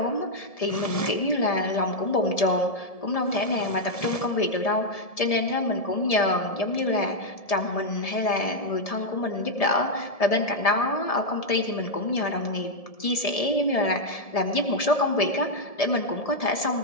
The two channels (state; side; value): late; right; 1.7 ms